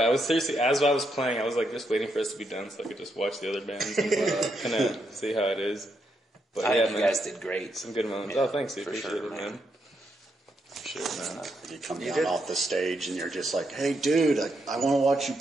I was seriously, as I was playing, I was like just waiting for us to be done so I could just watch the other bands and kind of see how it is. But I yeah, think you guys did great. Some good moments. Yeah, oh, thanks, dude. for Appreciate sure, it, man. Sure, man. You come down off the stage and you're just like, "Hey, dude, I want to watch you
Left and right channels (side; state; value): both; normal; correlation 0.80